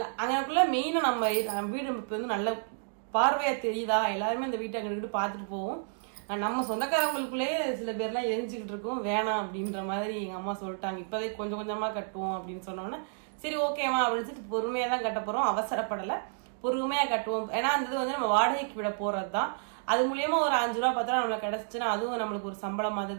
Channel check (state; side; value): silent; left; digital silence